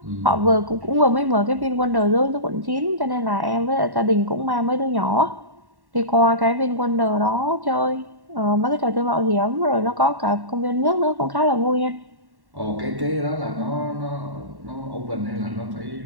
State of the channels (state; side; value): late; left; 1.1 ms